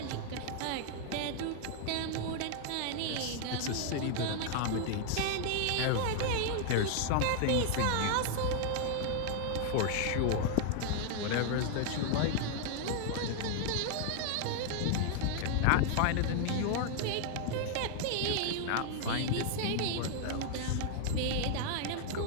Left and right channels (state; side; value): different; both; correlation 0.00